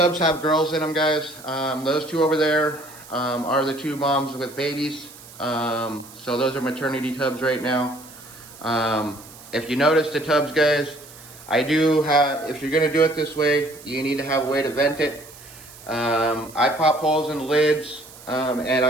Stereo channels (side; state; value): right; noise; hiss, 19 dB below the sound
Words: have girls in them, guys. Those two over there are the two moms with babies. So those are maternity tubs right now. If you notice the tubs, guys, if you're gonna do it this way, you need to have a way to vent it. I pop holes in the lids, and